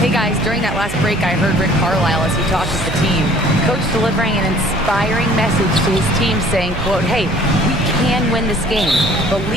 guys, during that last break, I heard Rick Carlisle as he talked with the team. Coach delivering an inspiring message to his team saying, quote, hey, we can win this game.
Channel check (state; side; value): noise; right; hum, 11 dB below the sound